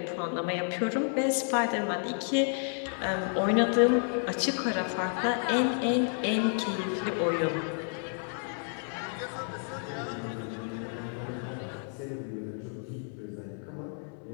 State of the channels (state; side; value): silent; right; 57 dB below the other